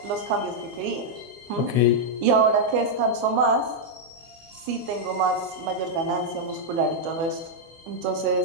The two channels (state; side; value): late; left; 24 ms